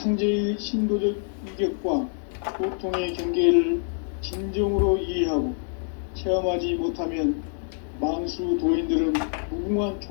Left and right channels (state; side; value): silent; right; 61 dB below the other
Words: 신도적 이격과 고통의 경계를 진정으로 이해하고 체험하지 못하면 만수 도인들은 무궁한